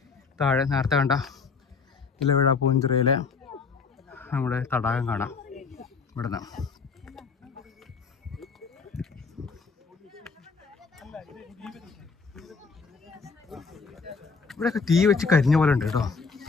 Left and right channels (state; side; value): quieter; right; 5.0 dB